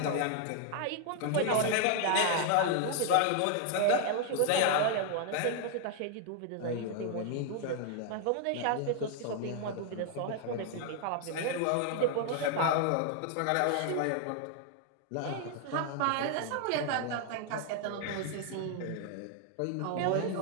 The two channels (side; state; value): both; different; correlation 0.00